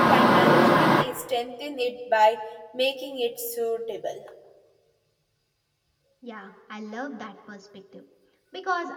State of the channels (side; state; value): both; identical; correlation 1.00